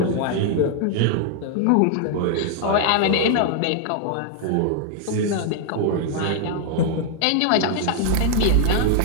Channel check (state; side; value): different; both; correlation 0.00